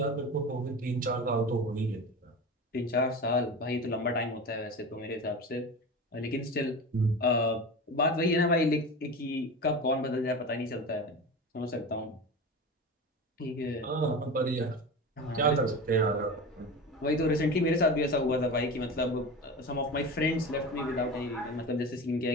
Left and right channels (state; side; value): normal; both; correlation 0.28